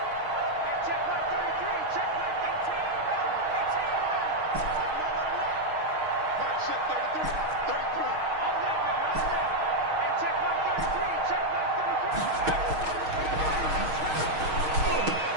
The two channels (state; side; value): late; left; 6.4 ms